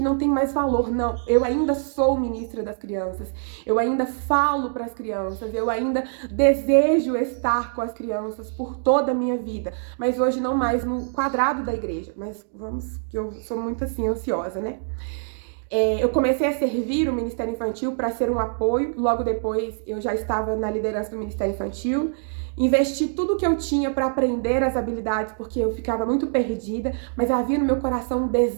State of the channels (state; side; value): silent; left; digital silence